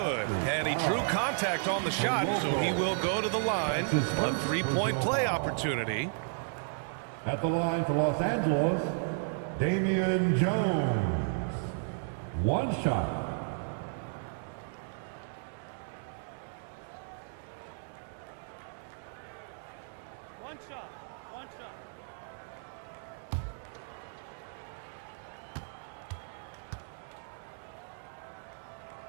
And he drew contact on the shot, so he will go to the line. A 3-point play opportunity. At the line for Los Angeles, Damian Jones. 1 shot. One shot.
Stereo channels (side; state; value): left; silent; 55 dB below the other